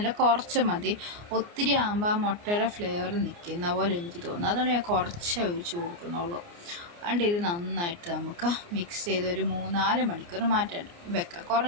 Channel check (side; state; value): left; late; 29 ms